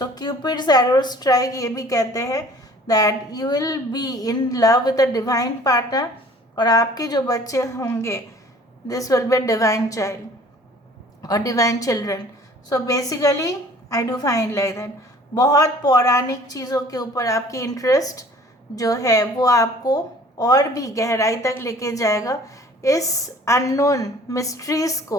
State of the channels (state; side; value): normal; both; correlation 0.51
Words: क्यूपिड्स एरो स्ट्राइक ये भी कहते हैं that you will be in love with a divine partner, और आपके जो बच्चे होंगे this will be divine child और divine children. So basically I do find like that बहुत पौराणिक चीज़ों के ऊपर आपकी इंटरेस्ट जो है वो आपको और भी गहराई तक लेके जाएगा। इस अननोन मिस्ट्रीज़